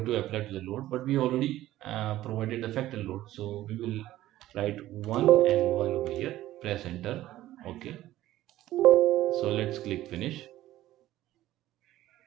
to apply to the load, but we already provided the factor load, so we will write 1 and 1 over here. Press enter. Okay, So let's click finish.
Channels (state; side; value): quieter; left; 14.8 dB